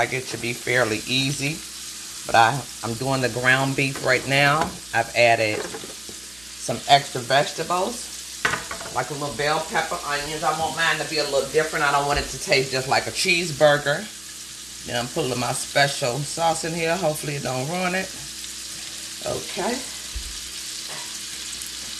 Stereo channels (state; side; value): noise; right; hum, 25 dB below the sound